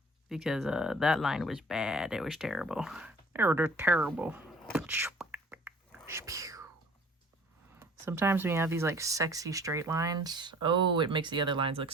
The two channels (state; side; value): normal; both; correlation 0.50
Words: because that line was bad. It was terrible. They're terrible. Sometimes when you have these like sexy straight lines, oh, it makes the other lines look